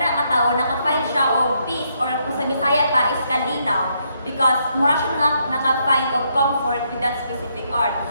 katawo naka-find siya og peace, or kung sa Bisaya pa is kalinaw, because mura siya naka-find of comfort with that specific art.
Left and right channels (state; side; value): inverted; both; correlation -0.75